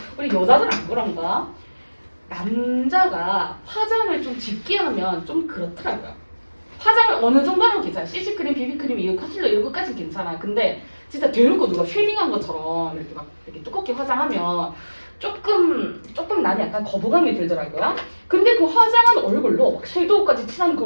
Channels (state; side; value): inverted; both; correlation -1.00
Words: 우리 여자들 안 그런가? 남자가 화장을 좀 짙게 하면 좀 그렇더라고요. 화장을 어느 정도는 괜찮아. CC크림, 비비크림, 이거 컨실러 이런 것까지는 괜찮아. 근데 진짜 대놓고 누가 쉐딩한 것처럼 이렇게 막 이렇게 두껍게 화장하면 조금 나는 약간 거부감이 들더라고요. 근데 그 화장한 얼굴로 막 섀도우까지 칠한